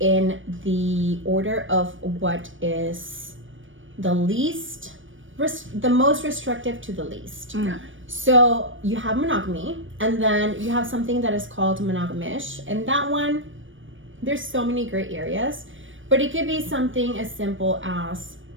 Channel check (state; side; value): late; left; 0.56 ms